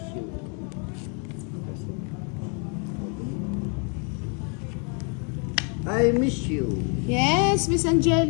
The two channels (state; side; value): quieter; right; 38.1 dB